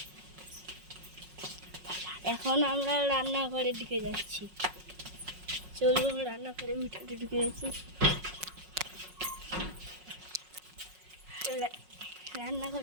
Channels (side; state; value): left; late; 5.5 ms